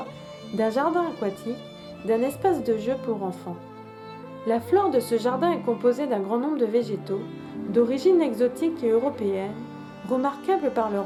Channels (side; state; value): both; identical; correlation 1.00